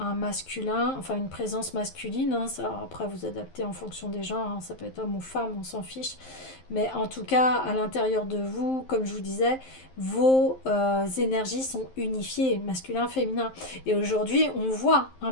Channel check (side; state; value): right; late; 11 ms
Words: masculin, enfin une présence masculine. Hein, ça, après, vous adaptez en fonction des gens, hein, ça peut être homme ou femme, on s'en fiche. Mais en tout cas, à l'intérieur de vous, comme je vous disais, vos énergies sont unifiées, masculin, féminin. Et aujourd'hui, on voit un